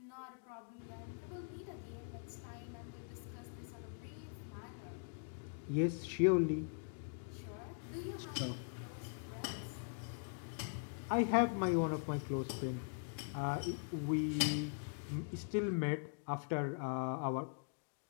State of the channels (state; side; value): silent; right; digital silence